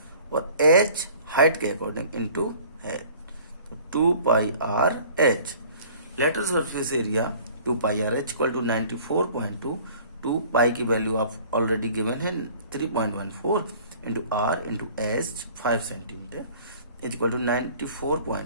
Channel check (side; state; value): both; inverted; correlation -0.50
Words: और h हाइट के अकॉर्डिंग इनटू है, तो 2πr/h। Lateral surface area 2πr/h equal to 94.2, 2 pi की वैल्यू आप ऑलरेडी गिवन है 3.14 into r into h 5 centimetre is equal to